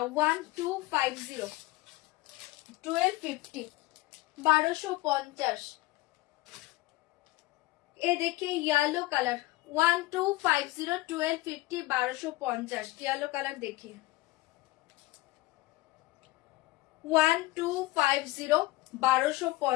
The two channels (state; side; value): quieter; right; 19.8 dB